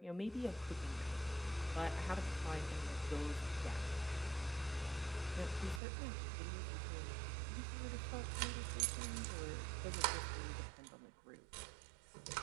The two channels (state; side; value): drops out; left; at 5.8 s